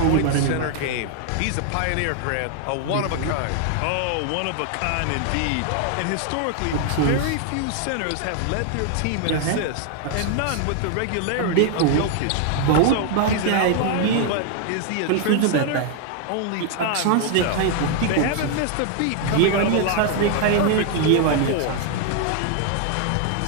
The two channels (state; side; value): different; both; correlation 0.00